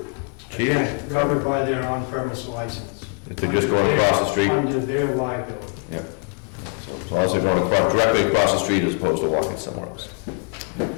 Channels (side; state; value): right; quieter; 36.1 dB